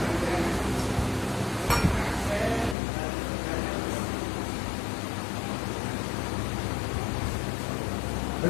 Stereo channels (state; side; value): drops out; right; at 2.8 s